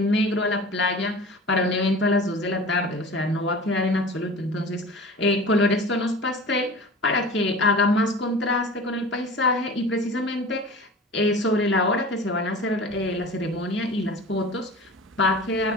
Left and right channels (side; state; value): both; normal; correlation 0.38